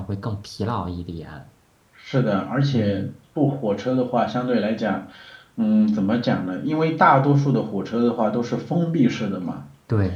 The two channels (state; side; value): identical; both; correlation 1.00